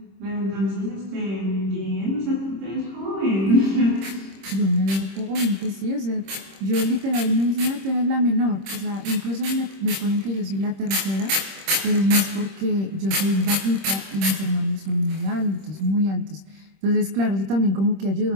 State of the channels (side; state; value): left; late; 26 ms